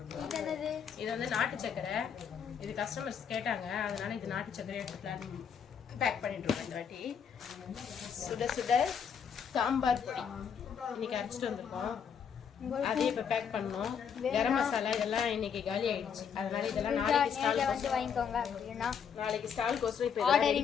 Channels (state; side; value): quieter; right; 7.3 dB